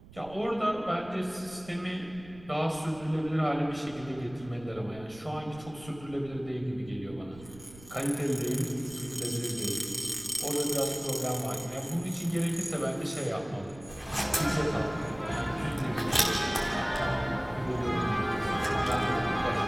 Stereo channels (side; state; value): right; noise; rumble, 19 dB below the sound